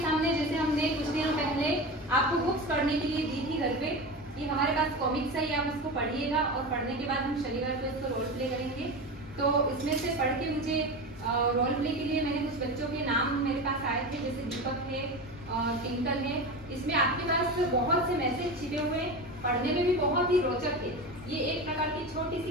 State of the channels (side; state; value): both; normal; correlation 0.25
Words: जैसे हमने कुछ दिनों पहले आपको बुक्स पढ़ने के लिए दी थी घर पे, कि हमारे पास कॉमिक्स है, आप उसको पढ़िएगा और पढ़ने के बाद हम शनिवार को इसको रोल प्ले करेंगे। तो इसमें से पढ़ के मुझे रोल प्ले के लिए मैंने कुछ बच्चों के नाम मेरे पास आए थे, जैसे दीपक है, टिंकल है। इसमें आपके पास बहुत से मैसेज छिपे हुए, पढ़ने में भी बहुत ही रोचक है। ये एक प्रकार की छोटी